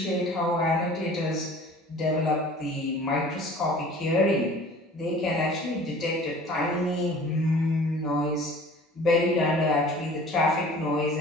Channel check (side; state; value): both; normal; correlation 0.45